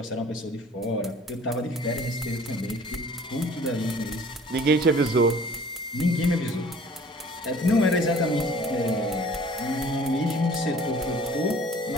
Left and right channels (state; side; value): normal; both; correlation 0.50